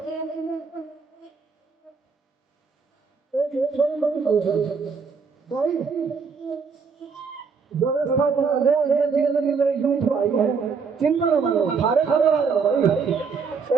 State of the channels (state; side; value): quieter; left; 5.4 dB